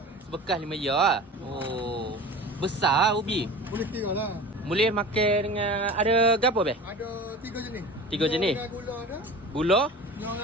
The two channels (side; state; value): both; normal; correlation 0.36